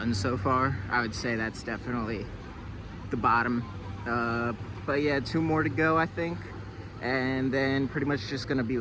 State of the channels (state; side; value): identical; both; correlation 1.00